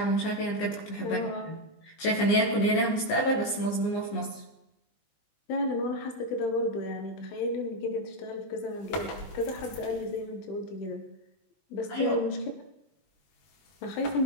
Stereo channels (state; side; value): late; right; 20 ms